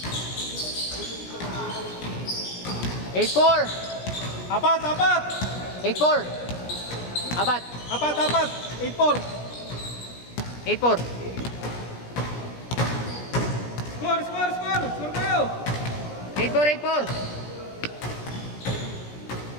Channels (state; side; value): late; right; 17 ms